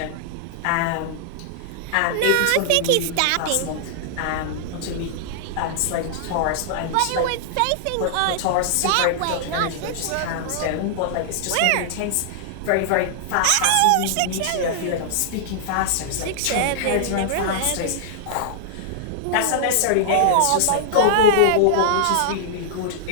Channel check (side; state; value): both; different; correlation -0.01